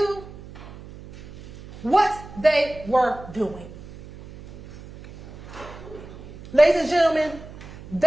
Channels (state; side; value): noise; right; hum, 16 dB below the sound